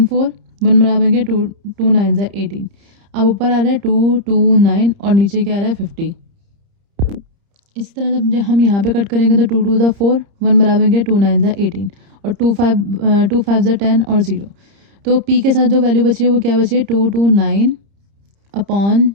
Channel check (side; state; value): left; late; 30 ms